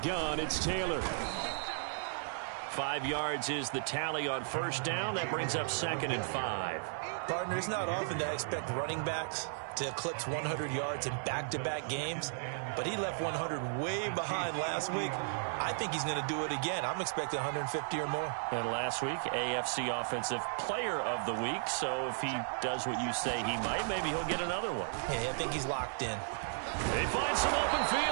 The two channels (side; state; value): left; silent; digital silence